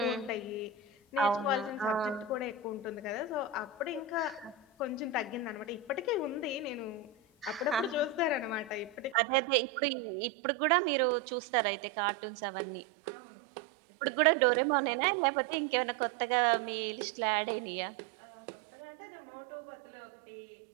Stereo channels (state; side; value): drops out; left; at 9.2 s